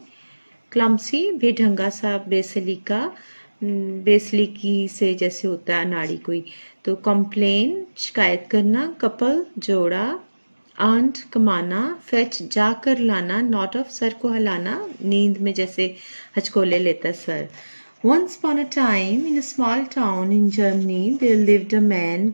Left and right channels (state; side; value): inverted; both; correlation -1.00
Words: क्लम्सी बेढंगा सा, बेसलीका बेसलीकी से जैसे होता है अनाड़ी कोई। तो कंप्लेन शिकायत करना, कपल जोड़ा, आंट कमाना, फेच जाकर लाना, नॉट ऑफ सर को हिलाना, नींद में जैसे हचकोले लेता sir. Once upon a time in a small town in Germany there lived a man